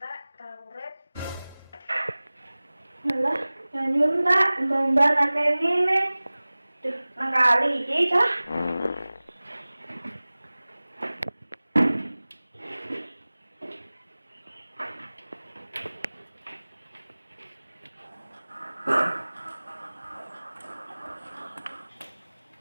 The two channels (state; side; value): inverted; both; correlation -0.99